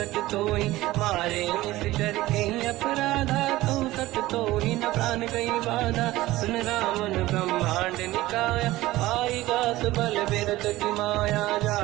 तोहि। मारे निश्चर कहीं अपराधा, तो सट तोहि न प्राण कहीं बाधा। सुन रामन ब्रह्मांड निकाया, आई दास बल बिरत की माया।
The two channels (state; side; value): quieter; left; 17.4 dB